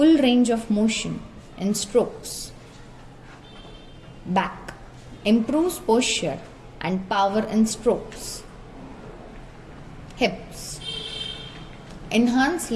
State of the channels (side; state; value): both; identical; correlation 1.00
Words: range of motion in strokes. Back, improves posture and power in strokes. Hips, enhance